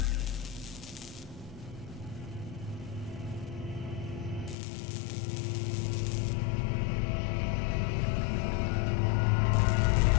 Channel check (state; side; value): drops out; right; at 4.5 s